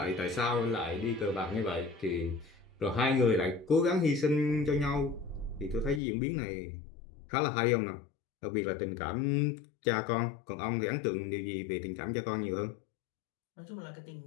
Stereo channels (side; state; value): right; drops out; at 6.0 s